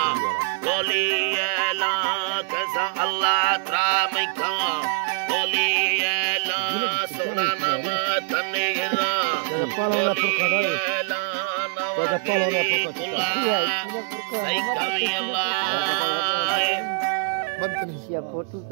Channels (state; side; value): silent; left; 63 dB below the other